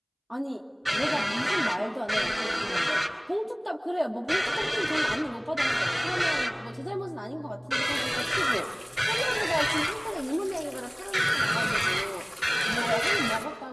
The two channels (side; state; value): both; identical; correlation 1.00